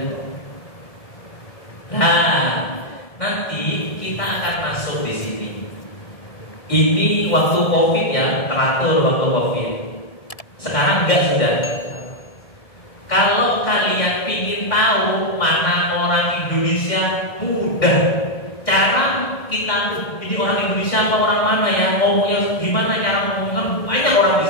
Nah, nanti kita akan masuk di sini. Ini waktu COVID ya, teratur waktu COVID. Sekarang enggak sudah. Kalau kalian ingin tahu mana orang Indonesia, mudah. Cara kita tuh, ini orang Indonesia apa orang mana ya, ngomongnya gimana cara ngomongnya, banyak orang di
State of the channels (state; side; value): late; right; 1.7 ms